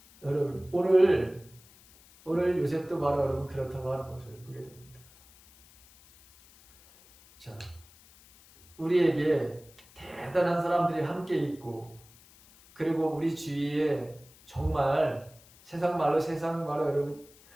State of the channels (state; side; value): noise; left; hiss, 25 dB below the sound